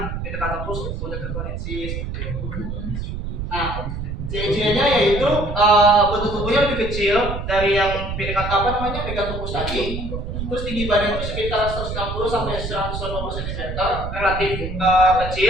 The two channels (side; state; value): right; noise; rumble, 5 dB below the sound